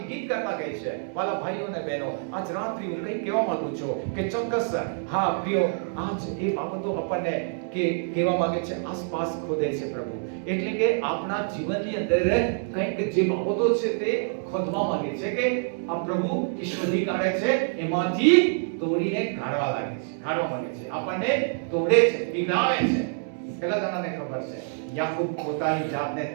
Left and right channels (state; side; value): silent; left; digital silence